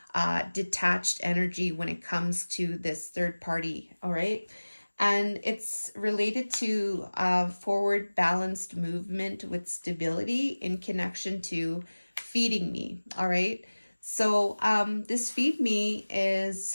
detached energy when it comes to this third party. All right. And it's related to forward balanced movement with stability in connection to feeding me. All right. So this feed me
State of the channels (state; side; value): inverted; both; correlation -1.00